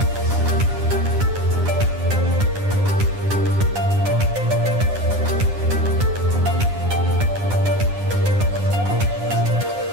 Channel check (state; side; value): late; left; 9.8 ms